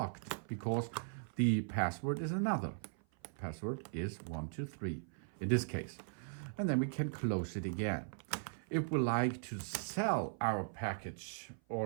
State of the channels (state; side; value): silent; left; 52 dB below the other